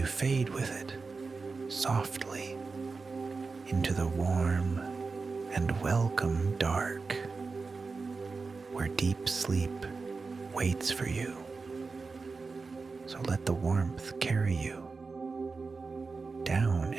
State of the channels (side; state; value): left; quieter; 4.3 dB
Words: fade with it softly into the warm and welcome dark, where deep sleep waits for you. So let the warmth carry you down